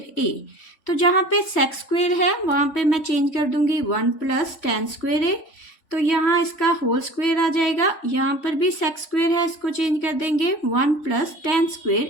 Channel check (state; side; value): late; right; 3.4 ms